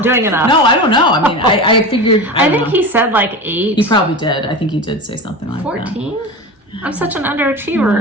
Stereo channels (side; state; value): both; normal; correlation 0.27